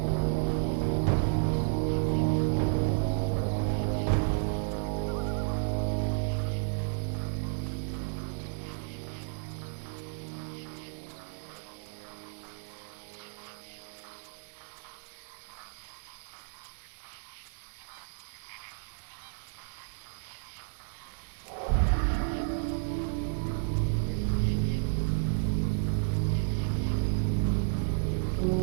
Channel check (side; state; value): left; silent; 56 dB below the other